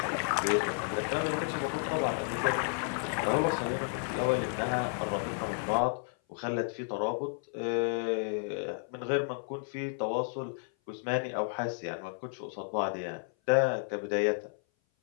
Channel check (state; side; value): silent; right; 56 dB below the other